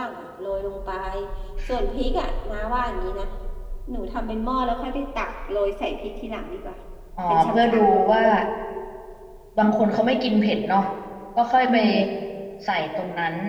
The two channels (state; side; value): identical; both; correlation 1.00